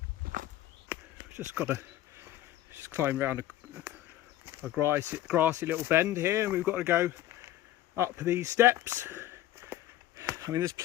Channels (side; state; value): right; quieter; 13.9 dB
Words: Just got to climb around a grassy little bend here, and we've got to go up these steps. I mean, there's